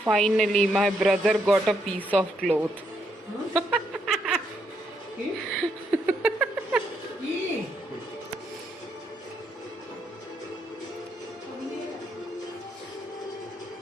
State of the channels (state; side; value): normal; both; correlation 0.76